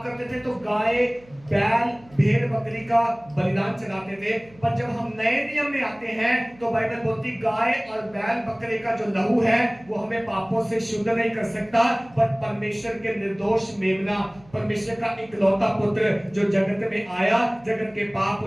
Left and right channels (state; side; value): noise; right; hum, 26 dB below the sound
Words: करते थे तो गाय, बैल, भेड़, बकरी का बलिदान चढ़ाते थे। पर जब हम नए नियम में आते हैं तो बाइबल बोलती गाय और बैल, बकरे का जो लहू है वो हमें पापों से शुद्ध नहीं कर सकता, पर परमेश्वर के निर्दोष मेमना, परमेश्वर का इकलौता पुत्र जो जगत में आया, जगत के पाप